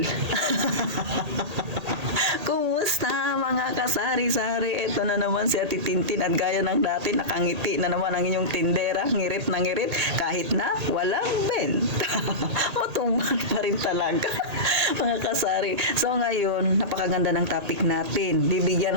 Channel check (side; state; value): left; late; 1.8 ms